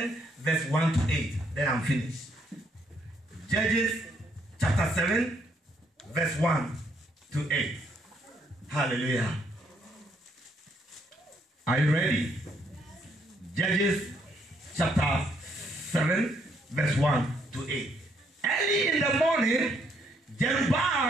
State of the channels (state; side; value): normal; both; correlation 0.71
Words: verse 1 to 8. Then I'm finished. Judges chapter 7, verse 1 to 8. Hallelujah. Are you ready? Judges chapter 7, verse 1 to 8. Early in the morning,